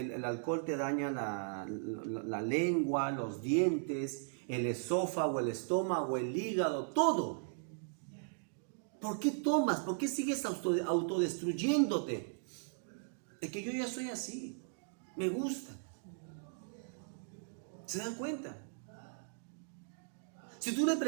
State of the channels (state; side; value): silent; left; digital silence